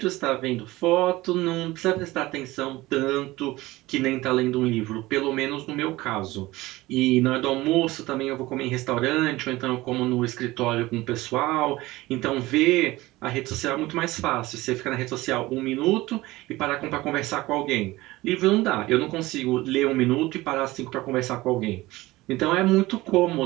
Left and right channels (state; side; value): quieter; left; 19.0 dB